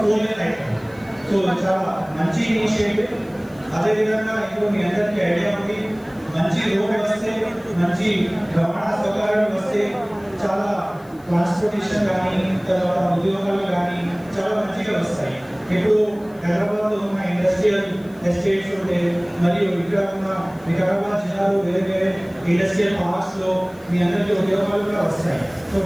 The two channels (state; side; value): noise; left; hiss, 28 dB below the sound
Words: 4 లేన్ అవుతుంది. సో చాలా మంచి ఇనిషియేటివ్. అదేవిధంగా ఇప్పుడు మీ అందరికీ ఐడియా ఉంది, మంచి రోడ్ వస్తే, మంచి రవాణా సౌకర్యాలు వస్తే చాలా ట్రాన్స్పోర్టేషన్ కానీ, తర్వాత ఉద్యోగాలు కానీ చాలా మంచిగా వస్తాయి. ఇప్పుడు హైదరాబాద్లో ఉన్న ఇండస్ట్రియల్ ఎస్టేట్స్ ఉంటే, మరియు ఇక్కడ ఉన్న వికారాబాద్ జిల్లాలో వేరే వేరే ఇండస్ట్రియల్ పార్క్స్లో మీ అందరికీ ఉద్యోగాలు కూడా వస్తాయి. సో